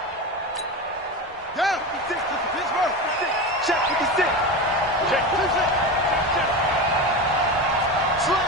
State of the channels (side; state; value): both; normal; correlation 0.23